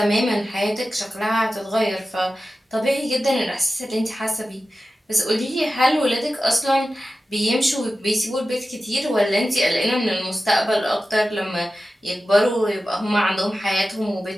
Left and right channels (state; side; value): normal; both; correlation 0.94